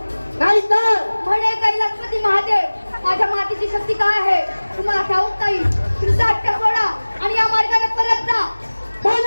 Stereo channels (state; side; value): inverted; both; correlation -1.00